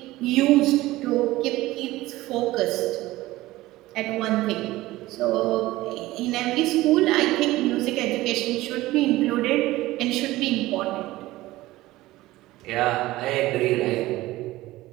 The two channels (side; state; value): left; quieter; 17.7 dB